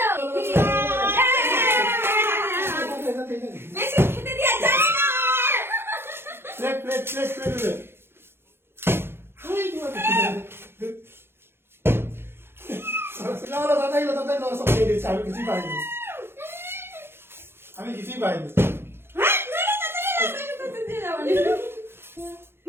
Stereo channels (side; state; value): left; late; 0.11 ms